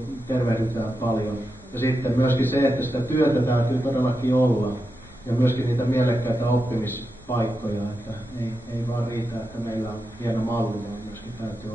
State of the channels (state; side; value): normal; both; correlation 0.88